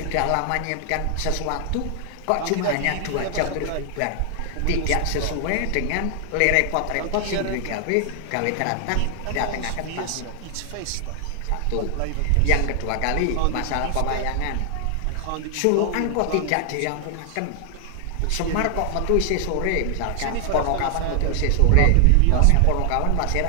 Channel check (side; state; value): both; different; correlation 0.00